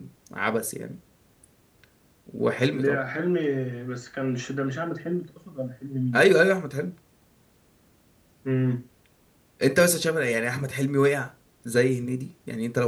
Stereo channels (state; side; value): identical; both; correlation 1.00